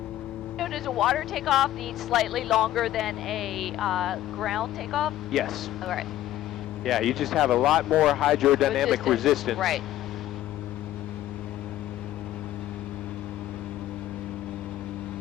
So does a water takeoff need slightly longer than a ground takeoff? Yes. All right. Yeah, you just have a lot more hydrodynamic resistance. Right.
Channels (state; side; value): quieter; right; 13.7 dB